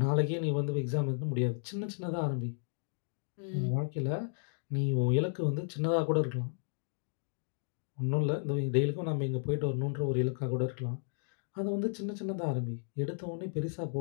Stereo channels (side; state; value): right; silent; digital silence